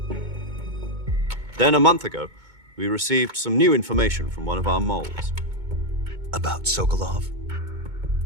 Then a month ago, we received some new information from one of our moles. About Sokolov?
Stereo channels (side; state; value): left; late; 2.2 ms